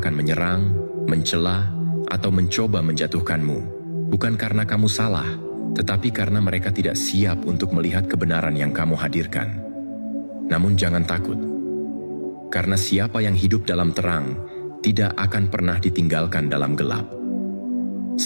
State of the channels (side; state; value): both; inverted; correlation -1.00